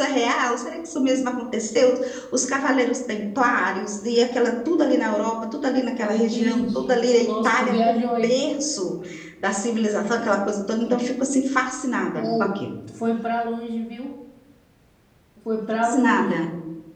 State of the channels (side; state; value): both; identical; correlation 1.00